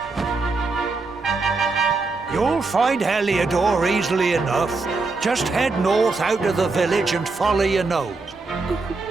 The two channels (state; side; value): quieter; left; 3.8 dB